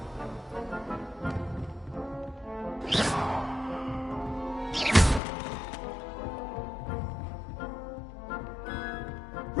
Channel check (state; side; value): drops out; right; at 5.2 s